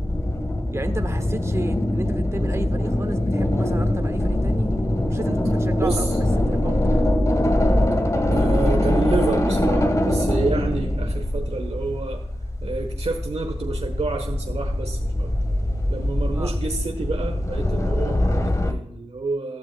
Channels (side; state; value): both; normal; correlation 0.91